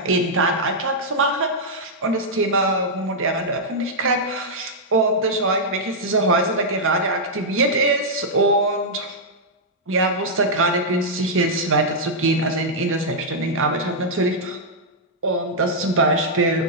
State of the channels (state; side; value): normal; both; correlation -0.07